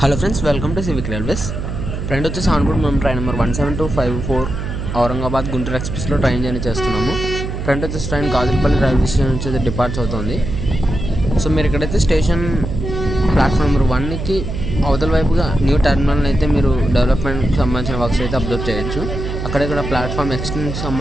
Hello friends, welcome to civic railways. Friend వచ్చేసి ఆన్బోర్డ్ మనం train number 17254 ఔరంగాబాద్ గుంటూరు ఎక్స్ప్రెస్లో ట్రైన్ జర్నీ చేస్తున్నాము. ఫ్రెండ్ వచ్చేసి ట్రైన్ గాజులపల్లి రైల్వే స్టేషన్ నుంచి డిపార్చ్ అవుతుంది. సో మీరు ఇక్కడైతే స్టేషన్ ప్లాట్ఫామ్ నెంబర్ 1కి అవతల వైపుగా న్యూ టెర్మినల్ అయితే మీరు డెవలప్మెంట్కి సంబంధించిన వర్క్స్ అయితే అబ్జర్వ్ చేయొచ్చు. అక్కడక్కడ ప్లాట్ఫామ్ ఎక్స్టెన్షన్కి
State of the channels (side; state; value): right; noise; hum, 5 dB below the sound